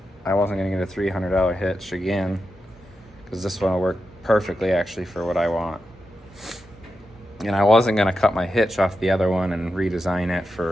I wasn't gonna get a $300 hitch again, because this one will work perfectly actually for what I want. And I wasn't gonna cut my hitch off the other one and redesign it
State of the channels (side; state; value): both; normal; correlation 0.89